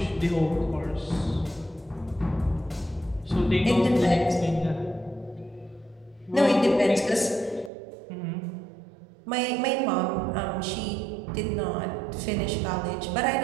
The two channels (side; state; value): left; drops out; at 7.7 s